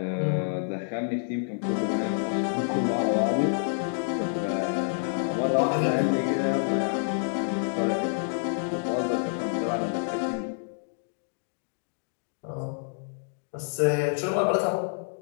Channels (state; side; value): silent; right; digital silence